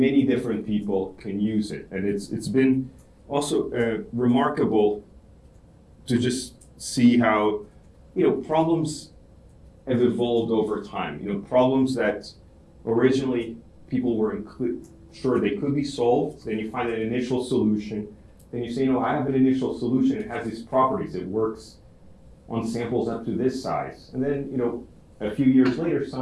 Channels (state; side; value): identical; both; correlation 1.00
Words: different people can use it. And it's been also remarkable to just see how problems have evolved over time. Problems that originally people were sure they could be solved. Then you find an initial solution. Then you say, I have an initial solution. It has these properties. It works on samples up to this size. And then, a few years later,